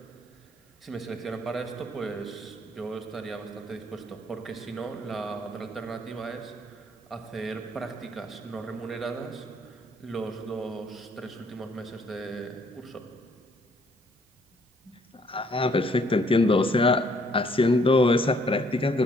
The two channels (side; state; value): both; normal; correlation 0.65